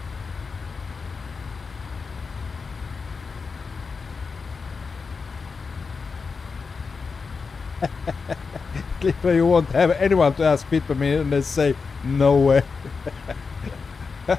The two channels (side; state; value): right; quieter; 4.9 dB